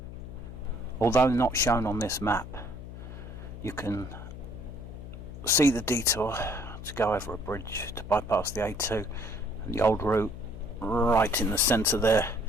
although not shown on this map, you can see the detour to go over a bridge to bypass the A2 and the old route right in the centre there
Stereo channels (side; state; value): left; noise; hum, 12 dB below the sound